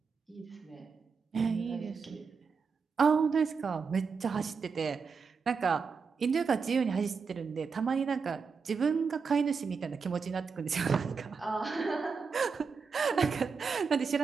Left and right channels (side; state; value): left; quieter; 5.4 dB